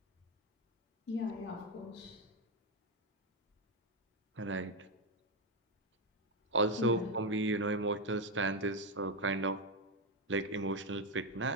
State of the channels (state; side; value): normal; both; correlation 0.07